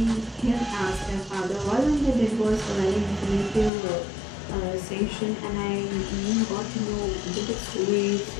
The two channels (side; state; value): right; drops out; at 3.7 s